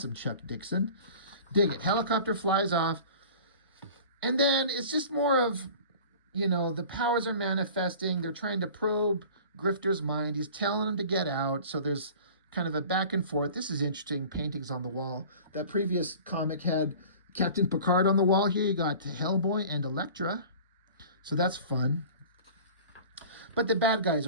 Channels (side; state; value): both; inverted; correlation -0.42